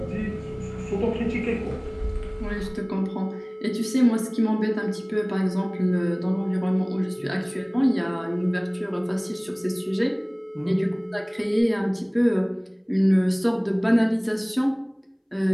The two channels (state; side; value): identical; both; correlation 1.00